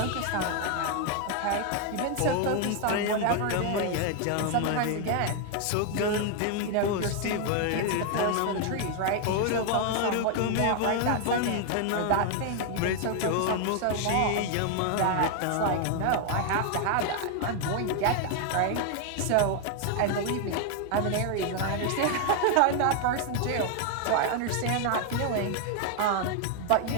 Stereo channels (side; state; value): both; different; correlation 0.00